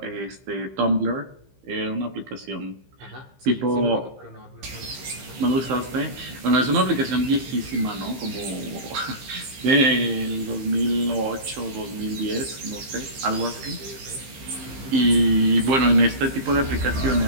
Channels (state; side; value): late; left; 15 ms